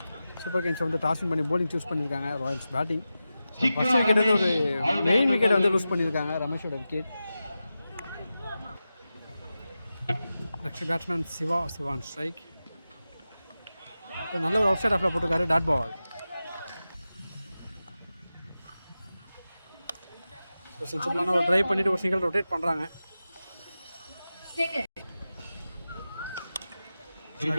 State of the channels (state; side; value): inverted; both; correlation -0.93